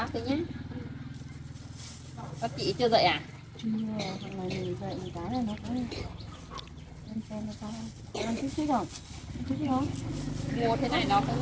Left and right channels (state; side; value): identical; both; correlation 1.00